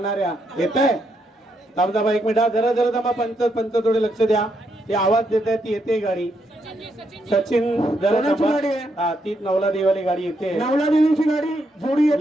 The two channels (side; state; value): both; normal; correlation 0.78